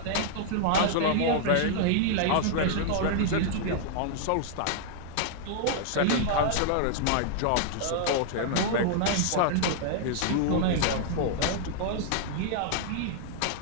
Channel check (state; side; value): different; both; correlation -0.01